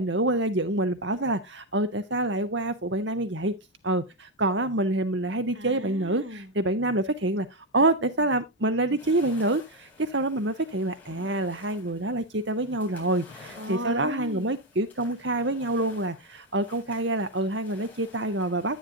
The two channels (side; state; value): both; normal; correlation 0.07